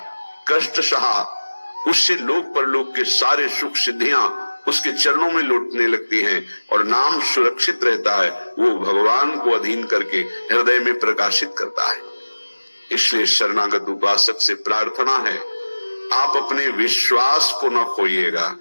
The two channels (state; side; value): inverted; both; correlation -1.00